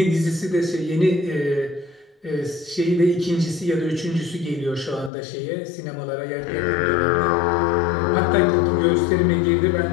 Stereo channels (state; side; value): drops out; right; at 5.1 s